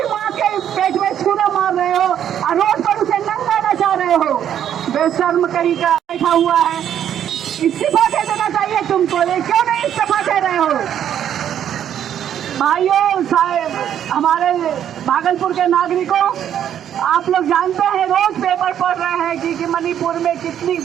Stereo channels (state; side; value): quieter; left; 9.9 dB